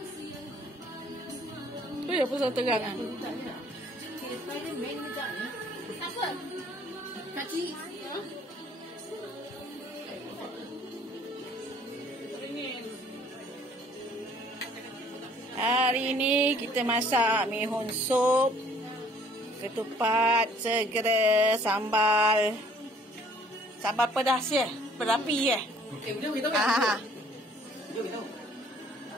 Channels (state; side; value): normal; both; correlation 0.58